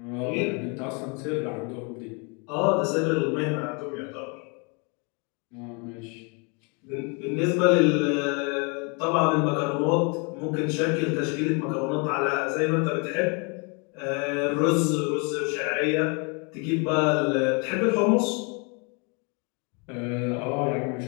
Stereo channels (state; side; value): quieter; right; 33.7 dB